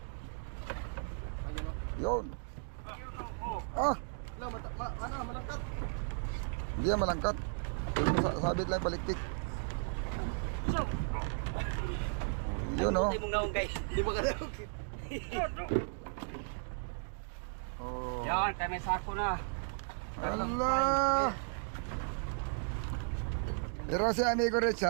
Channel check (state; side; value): silent; left; digital silence